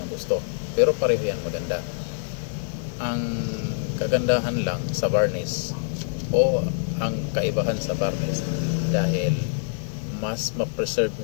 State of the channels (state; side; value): silent; right; digital silence